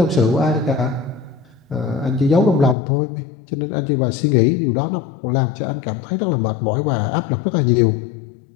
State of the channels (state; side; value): drops out; right; at 2.8 s